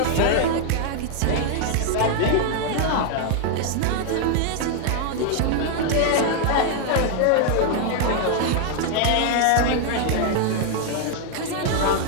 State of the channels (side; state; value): both; different; correlation 0.00